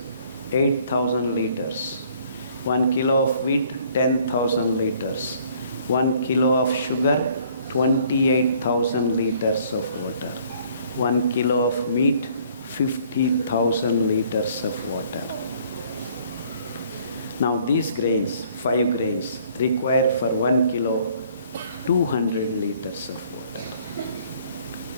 8,000 liters. 1 kilo of wheat, 10,000 liters. 1 kilo of sugar, 28,000 liters of water. 1 kilo of meat, 50,000 liters of water. Now these grains, 5 grains, require for 1 kilo 200 liters of water.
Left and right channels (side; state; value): both; inverted; correlation -0.60